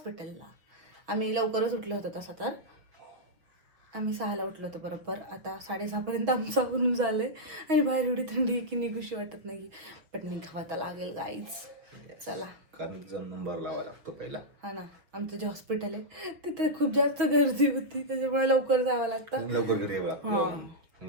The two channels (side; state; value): left; late; 6.3 ms